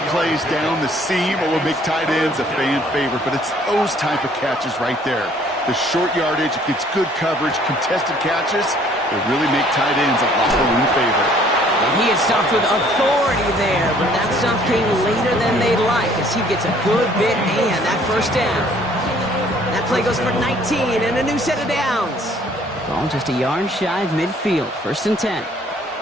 plays down the seam will make tight ends a fan favorite, but it's those type of catches right there. The short yardage, it gets good coverage, contested catches, they really make tight ends a locker room favorite. And he had stopped with authority there, but that stop came later than they'd like as he gets a good bit and that first down. That play goes for 19 and a new set of downs. Ball just a yard shy of midfield. First and 10.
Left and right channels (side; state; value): both; normal; correlation 0.59